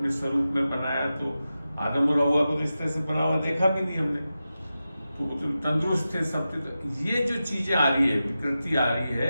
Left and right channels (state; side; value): inverted; both; correlation -0.92